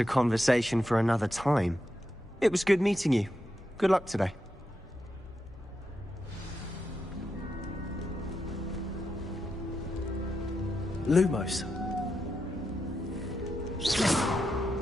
conversation for another time. It was good meeting you. Good luck today. Lumos.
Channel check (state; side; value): normal; both; correlation 0.86